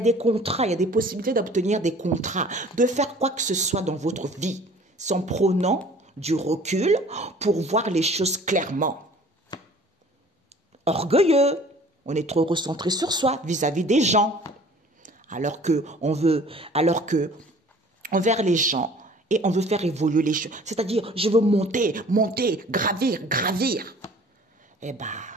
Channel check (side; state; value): both; normal; correlation 0.49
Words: contrats, il y a des possibilités d'obtenir des contrats, de faire quoi que ce soit dans votre vie, sans prenant du recul pour voir les choses clairement. Orgueilleux, on est trop recentré sur soi vis-à-vis des gens, alors que envers les gens, et on veut faire évoluer les choses. C'est-à-dire, je veux monter, gravir. Eh ben,